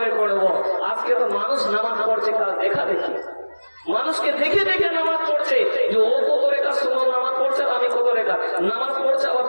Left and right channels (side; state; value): both; inverted; correlation -1.00